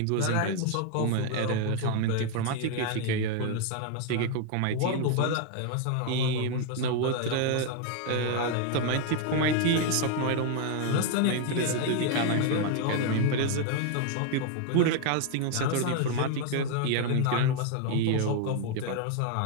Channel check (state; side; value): different; both; correlation 0.00